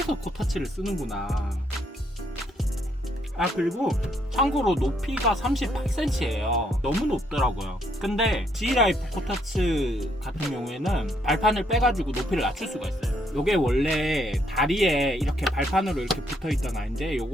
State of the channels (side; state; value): both; normal; correlation 0.72